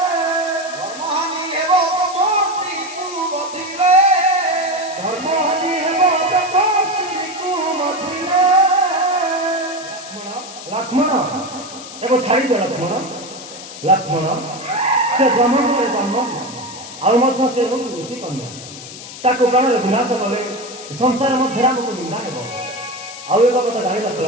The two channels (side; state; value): left; noise; hiss, 13 dB below the sound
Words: ଧର୍ମହାନି ହେବ ତମ ସ୍ତ୍ରୀକୁ ବଧିଲେ ଧର୍ମହାନି ହେବ ତମ ସ୍ତ୍ରୀକୁ ମଧିଲେ ଲକ୍ଷ୍ମଣ ଏବେ ଛାଡ଼ିଦିଅ ଲକ୍ଷ୍ମଣ ସେ ବ୍ରହ୍ମପୁରରେ ଜନ୍ମ ଆଉ ମଧ୍ୟ ସେ ହେଉଛି ଋଷି କନ୍ୟା ତାକୁ ପ୍ରାଣରେ ବିନାଶ କଲେ ସଂସାର ମଧ୍ୟରେ ଆମକୁ ନିନ୍ଦା ହେବ ଆଉ ଏକ କଥା ଜାଣିଲ